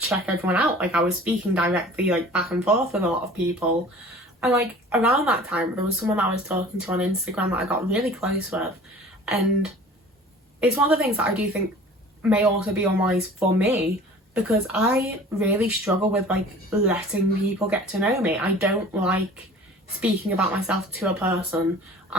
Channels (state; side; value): normal; both; correlation 0.45